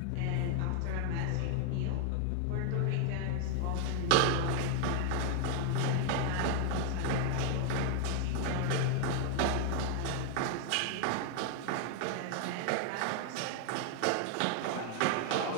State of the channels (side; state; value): both; different; correlation 0.00